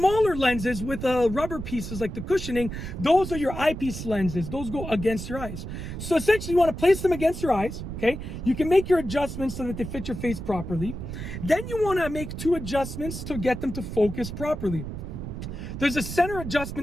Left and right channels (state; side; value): noise; right; rumble, 7 dB below the sound